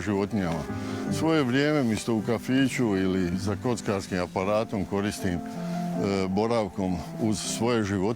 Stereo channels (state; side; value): noise; left; rumble, 25 dB below the sound